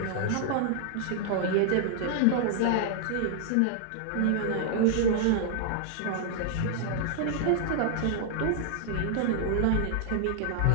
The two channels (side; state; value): both; different; correlation -0.01